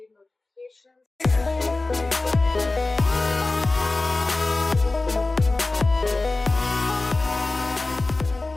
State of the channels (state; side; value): quieter; right; 3.2 dB